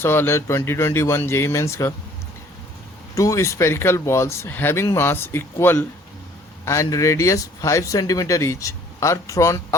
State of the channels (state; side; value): normal; both; correlation 0.57